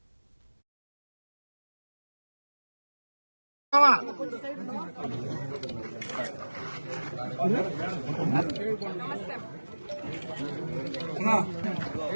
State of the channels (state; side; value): inverted; both; correlation -1.00